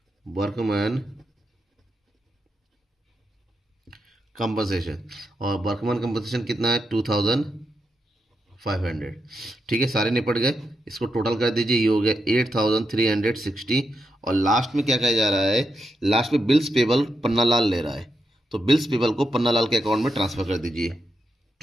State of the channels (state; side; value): normal; both; correlation 0.84